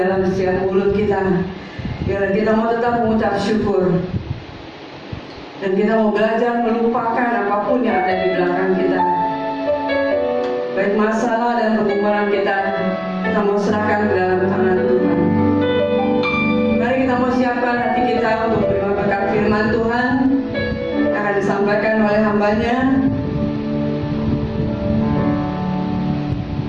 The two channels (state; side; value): identical; both; correlation 1.00